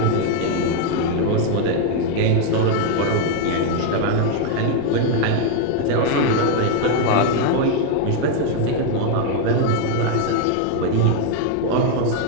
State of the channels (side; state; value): both; different; correlation 0.01